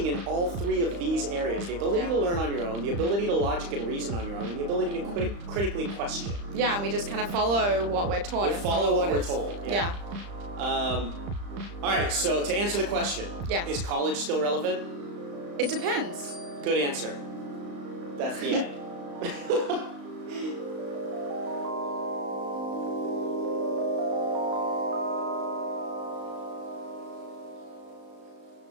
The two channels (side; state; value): left; late; 35 ms